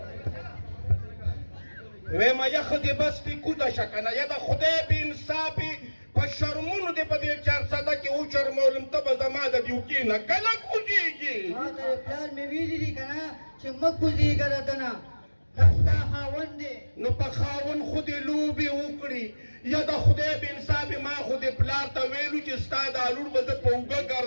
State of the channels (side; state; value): both; inverted; correlation -1.00